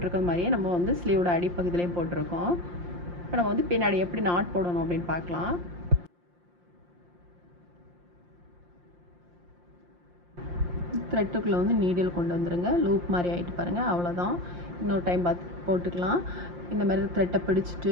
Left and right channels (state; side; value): late; left; 5.7 ms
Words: மாதிரியே நம்ம வந்து ஸ்லீவோட அடிப்பகுதியிலையும் போட்டிருக்கோம். இப்போ நம்ம வந்து பின்னாடி எப்படி நாட் போடணும் அப்படின்னு பார்க்கலாம். த்ரெட்டுக்குள்ளே வந்து நீடில் கொண்டு வந்துடுங்க. லூப் மாதிரி ஆகிட்டு பாருங்கள், அவ்வளோதான். இன்னொரு டைம் பார்த்து போட்டுக்கலாம். இந்த மாதிரி த்ரெட்டை